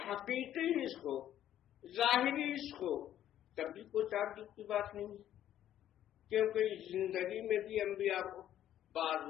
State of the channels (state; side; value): quieter; right; 11.5 dB